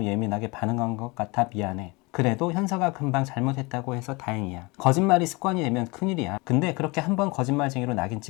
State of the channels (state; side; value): quieter; right; 26.1 dB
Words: 예민하게 반응한 것 같아 미안해. 그래도 현서가 금방 잘못했다고 해서 다행이야. 거짓말이 습관이 되면 큰일이야. 근데 그렇게 한번 거짓말쟁이로 낙인